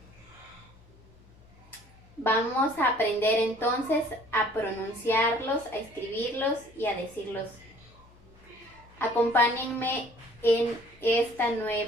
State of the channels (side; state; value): left; noise; hum, 26 dB below the sound